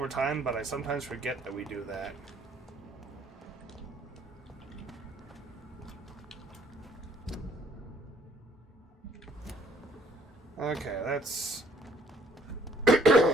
time, but I sometimes forget that we do that. Okay, that's...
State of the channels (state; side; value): normal; both; correlation 0.64